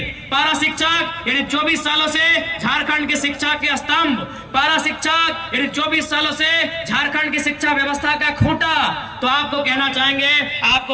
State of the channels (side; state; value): both; identical; correlation 1.00